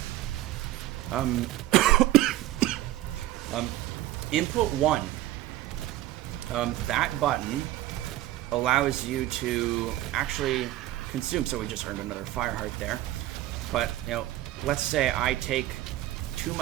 Input 1. That button allows you to actually consume, so we just earned another fire heart there. But, let's say I take too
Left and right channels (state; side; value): quieter; left; 15.0 dB